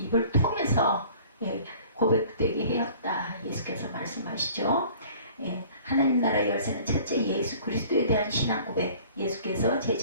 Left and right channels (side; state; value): both; inverted; correlation -0.49